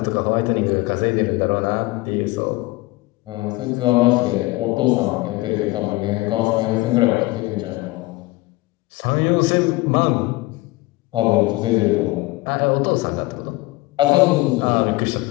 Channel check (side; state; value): right; quieter; 21.0 dB